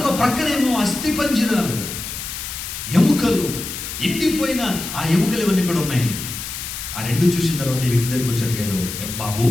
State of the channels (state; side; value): noise; left; hiss, 7 dB below the sound